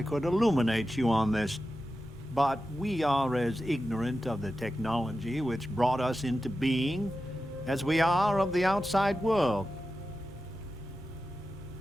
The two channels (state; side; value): normal; both; correlation 0.92